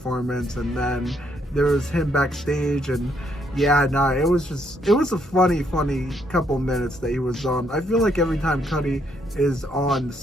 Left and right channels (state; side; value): normal; both; correlation 0.72